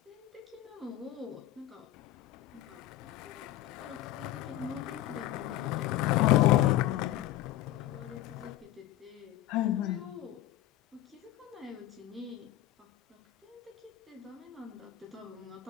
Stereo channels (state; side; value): quieter; right; 14.1 dB